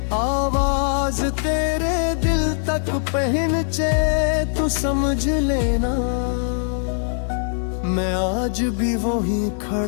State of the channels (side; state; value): right; silent; digital silence